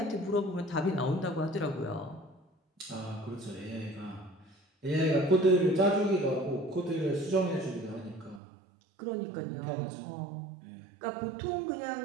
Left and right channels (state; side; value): drops out; left; at 8.4 s